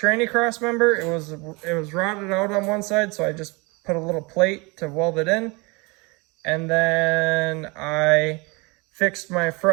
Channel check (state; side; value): quieter; left; 27.4 dB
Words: cross member. It was rotted out on one side, so I just put a little plate to weld it in. And then I fixed my